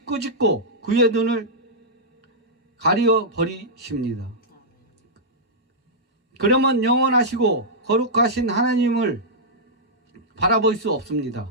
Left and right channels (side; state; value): both; normal; correlation -0.10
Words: 꾸짖고 그의 눈을 가리어 버리십니다. 그러면 영원하시고 거룩하신 하나님을 바라볼 수 없습니다.